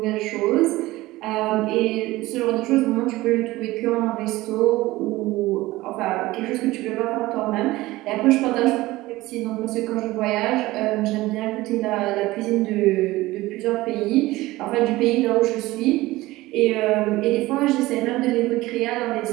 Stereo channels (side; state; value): left; quieter; 18.6 dB